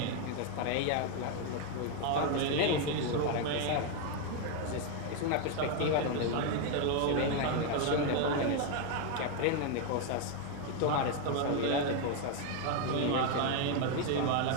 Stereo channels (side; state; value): both; different; correlation 0.01